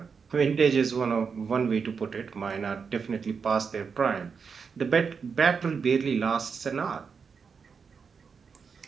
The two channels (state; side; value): quieter; left; 5.8 dB